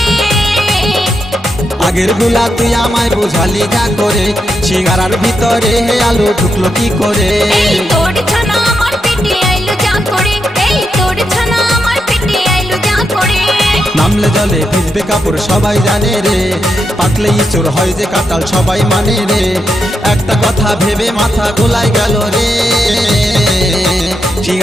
আগের গুলা তুই আমায় বোঝালি যা করে, সিঙ্গারার ভিতরে হে আলু ঢুকলো কি করে? এই তোর ছানা আমার পেটে আইলো যা করে, এই তোর ছানা আমার পেটে আইলো যা করে। নামলে জলে ভিজবে কাপড় সবাই জানে রে, পাকলেই চোর হয় যে কাটাল সবাই মানে রে। একটা কথা ভেবে মাথা গোলায় গেল রে,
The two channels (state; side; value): normal; both; correlation 0.84